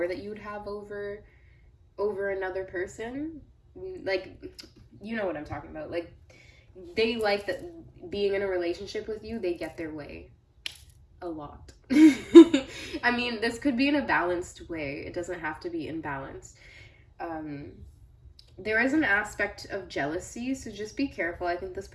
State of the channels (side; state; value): both; identical; correlation 1.00